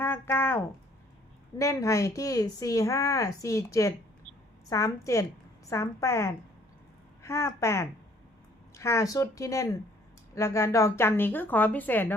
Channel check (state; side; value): normal; both; correlation 0.60